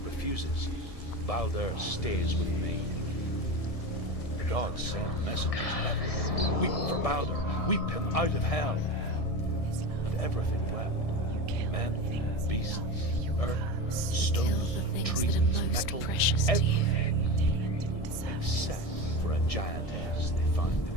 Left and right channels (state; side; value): late; right; 1.7 ms